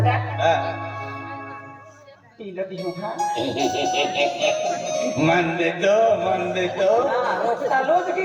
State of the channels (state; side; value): identical; both; correlation 1.00